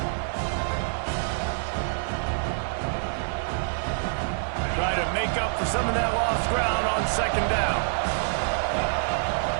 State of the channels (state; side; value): silent; left; digital silence